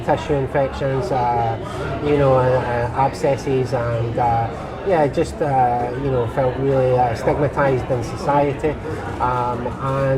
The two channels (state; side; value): identical; both; correlation 1.00